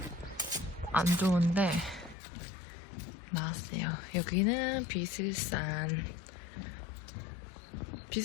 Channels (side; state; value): right; drops out; at 2.1 s